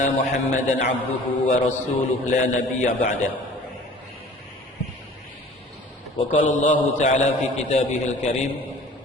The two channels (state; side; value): normal; both; correlation 0.47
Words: Muhammadan abduhu wa rasuluhu la nabiyya ba'dah. Wa qala Allah ta'ala fi kitabihil karim,